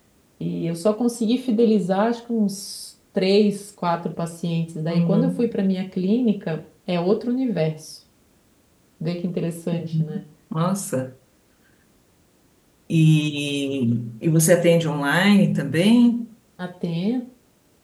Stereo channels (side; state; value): both; identical; correlation 1.00